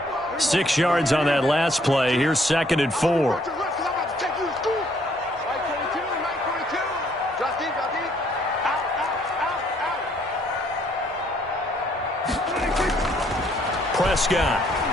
6 yards on that last play. Here's 2nd and 4. Prescott.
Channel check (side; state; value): both; normal; correlation 0.66